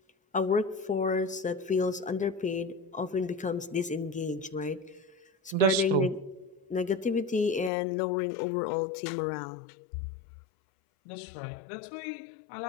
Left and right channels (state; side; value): drops out; right; at 7.7 s